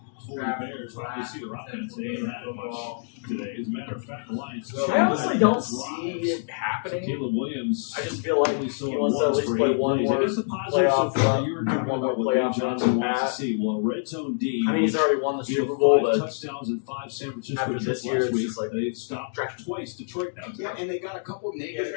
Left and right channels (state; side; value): silent; right; digital silence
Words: for the Bears. Obviously, their offense they ain't had much today. As a matter of fact, the Lions. I honestly don't see it happening. Caleb Williams. I just feel like he wants to at least play one more It is a positive playoff so far. run, You were talking one more about what playoff Dave run Johnson than wants to that. see. Well, Red Zone D. I mean, he's already won the he had Super Bowl, 5 but touchdowns and 5 San Francisco after this trips year, last it's week. just like They've stopped twice Detroit now. Yeah, and they got a couple